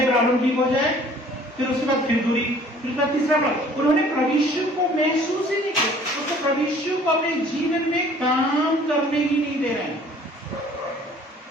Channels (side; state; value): both; normal; correlation 0.53